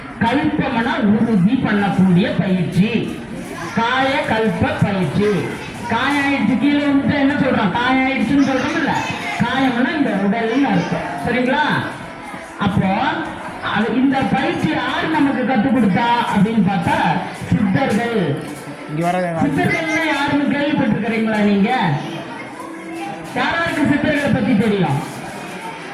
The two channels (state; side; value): identical; both; correlation 1.00